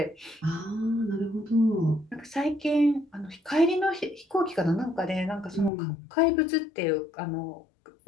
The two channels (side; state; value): right; drops out; at 5.7 s